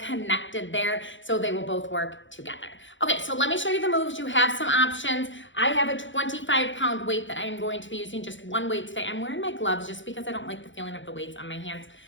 there, so they will both work together. Okay, so let me show you the moves. You have some options. I have a 25-pound weight that I am going to be using, just one weight today. I'm wearing my gloves just because I don't like the feeling of the weights on my hands.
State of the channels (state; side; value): late; right; 0.55 ms